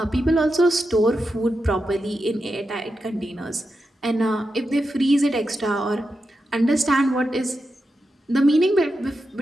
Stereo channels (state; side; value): normal; both; correlation 0.88